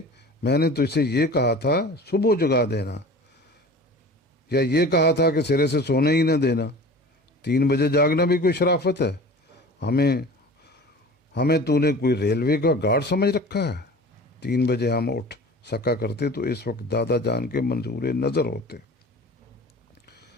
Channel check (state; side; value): normal; both; correlation 0.39